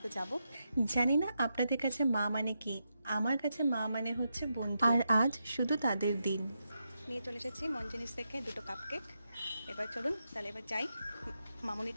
যাবো। জানি না আপনাদের কাছে মা মানে কি, আমার কাছে মা মানে হচ্ছে বন্ধু, আর আজ শুধু তাদের দিন। নিয়ে চলে এসেছি মন জিনিস থেকে দুটো কাপ কেক। এবার চলুন তাহলে এবার যাই, মামনির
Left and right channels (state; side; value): inverted; both; correlation -0.85